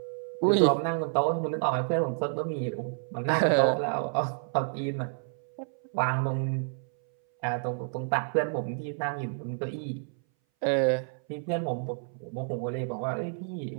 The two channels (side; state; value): left; silent; 58 dB below the other